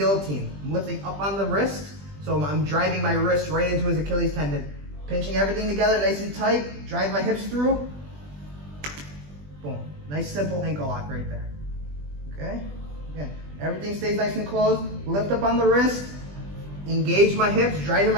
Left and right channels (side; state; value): left; late; 20 ms